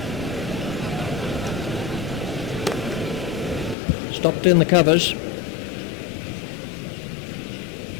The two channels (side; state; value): right; drops out; at 3.8 s